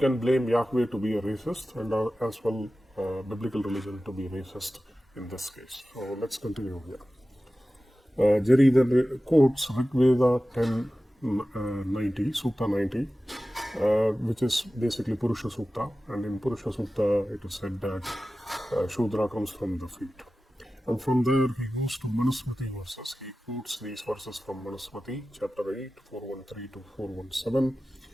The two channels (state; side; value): normal; both; correlation 0.95